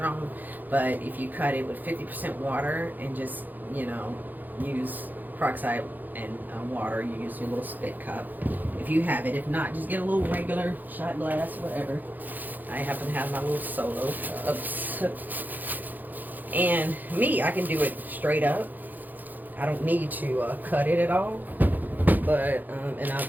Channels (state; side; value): late; left; 0.085 ms